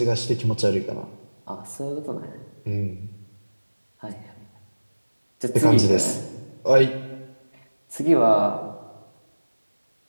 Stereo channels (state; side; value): inverted; both; correlation -1.00